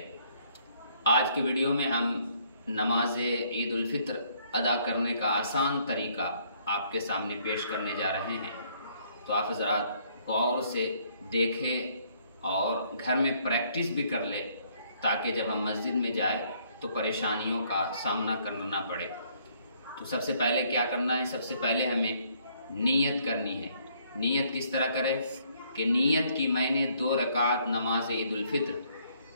आज की वीडियो में हम नमाज ईद उल फित्र अदा करने का आसान तरीका आपके सामने पेश करने जा रहे हैं। तो आप हज़रात गौर से देखें और घर में प्रैक्टिस भी कर ले, ताकि जब हम मस्जिद में जाए तो परेशानियों का सामना करना ना पड़े। तो सबसे पहले क्या करना है? सबसे पहले हमें नीयत करनी है। नीयत किस तरह करें कि नीयत की मैंने 2 रकात नमाज ईद उल फित्र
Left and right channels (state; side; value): inverted; both; correlation -0.66